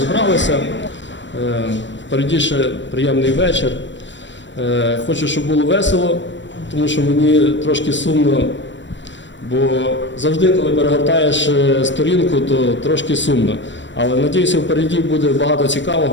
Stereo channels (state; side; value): late; right; 0.53 ms